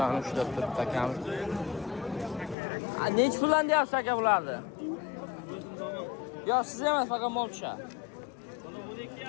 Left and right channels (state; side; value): drops out; right; at 2.6 s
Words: ushlab turibdi akamiz. Necha puldan deyapsiz aka bularni? Yo'q, siz emas, faqat mol tushadi.